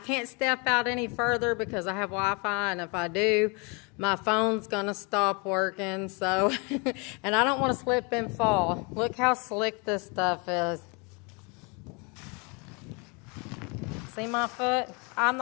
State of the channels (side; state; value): right; quieter; 31.4 dB